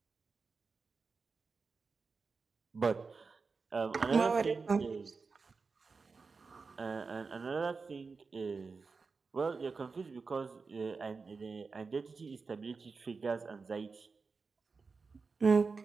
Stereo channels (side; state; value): left; quieter; 4.6 dB